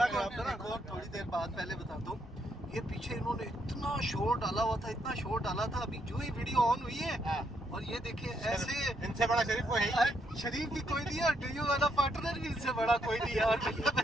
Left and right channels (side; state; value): both; normal; correlation 0.76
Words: खराब था ना। एक और थोड़ी देर बाद पहले बताता हूँ। ये पीछे इन्होंने इतना शोर डाला हुआ था, इतना शोर डाला था, अभी जो ही वीडियो ऑन हुई है और ये देखिए ऐसे, इनसे बड़ा शरीफ कोई है ही। शरीफ भी कोई नहीं है और डीयू वाला पार्टनर भी इनसे बड़ा कोई नहीं है। और